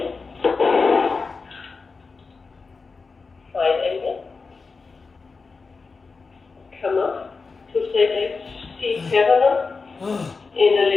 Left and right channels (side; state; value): right; quieter; 4.4 dB